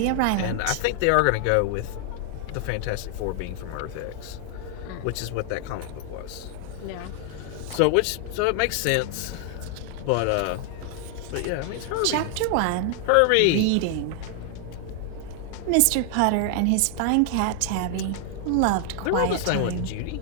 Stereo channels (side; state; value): both; different; correlation 0.00